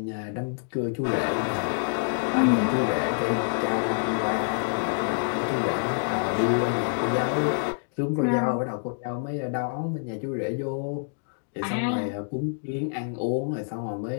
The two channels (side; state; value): right; silent; digital silence